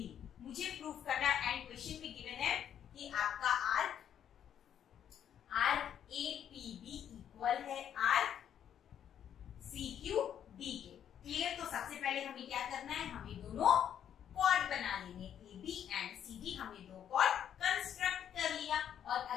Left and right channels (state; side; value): quieter; right; 9.4 dB